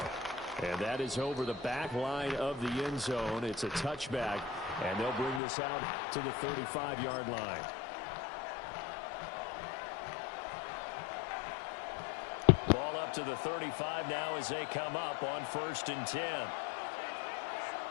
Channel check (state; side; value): drops out; right; at 5.4 s